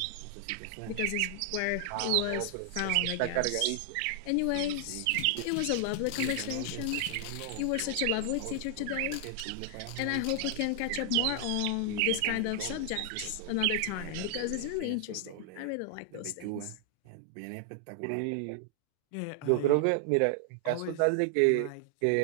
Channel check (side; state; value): both; different; correlation 0.00